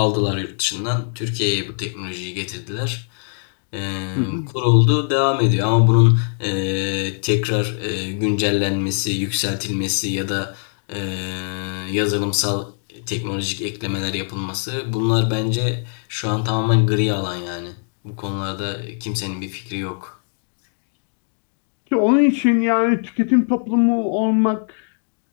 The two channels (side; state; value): right; silent; digital silence